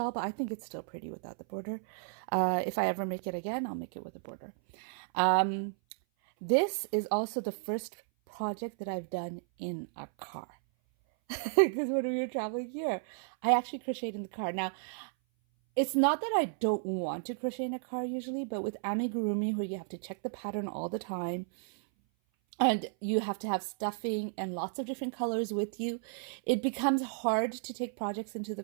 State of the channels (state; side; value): silent; left; 56 dB below the other